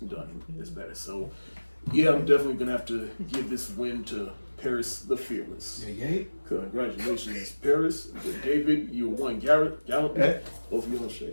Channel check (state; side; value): inverted; both; correlation -1.00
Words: as better. So, yeah, I'm definitely gonna have to give this win to Paris the Fearless. Yeah. Congratulations, Paris. David, you won. Gallup, both of you on